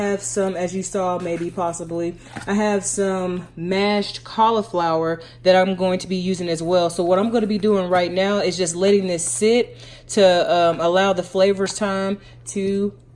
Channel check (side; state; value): both; identical; correlation 1.00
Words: some, as you saw, possibly, I have some mashed cauliflower that I'm going to be using as well. So what I'm going to be doing right now is just letting this sit to allow the flavors time to